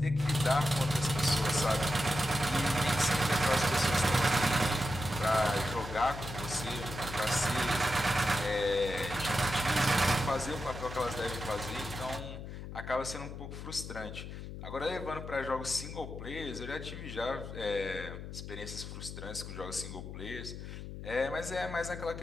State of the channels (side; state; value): left; noise; hum, 9 dB below the sound